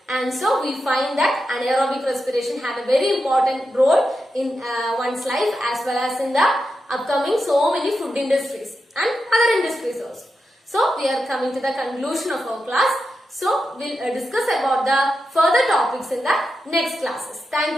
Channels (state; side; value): normal; both; correlation 0.88